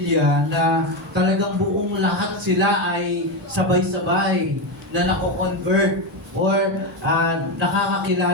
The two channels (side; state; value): both; normal; correlation 0.12